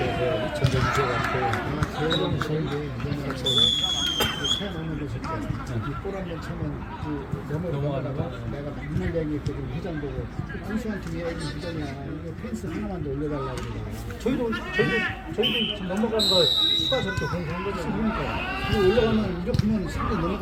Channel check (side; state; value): both; identical; correlation 1.00